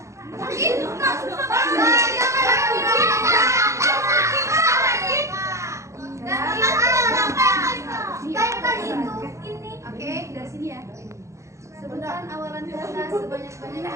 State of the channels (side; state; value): left; late; 0.14 ms